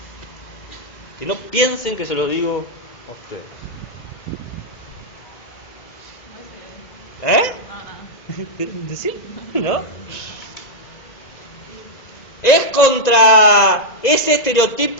Que no piensen que se lo digo a ustedes. ¿Sí? ¿No? Es contra ese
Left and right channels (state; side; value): late; right; 1.9 ms